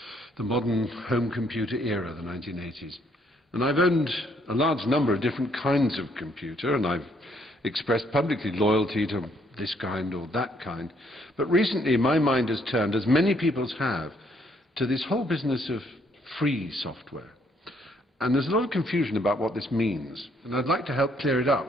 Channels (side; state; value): both; normal; correlation 0.69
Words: modern home computer era, the 1980s. And I've owned a large number of different kinds of computer, and I've expressed publicly loyalty to this kind or that kind. But recently my mind has turned, as many people's have, to this whole business of free software. And there's a lot of confusion about what this means. And I'd like to help clear it